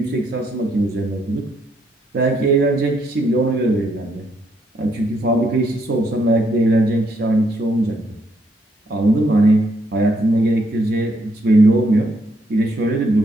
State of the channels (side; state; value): both; normal; correlation 0.74